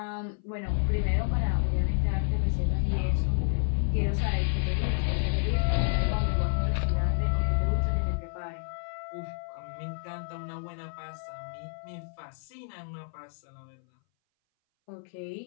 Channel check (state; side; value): silent; right; 58 dB below the other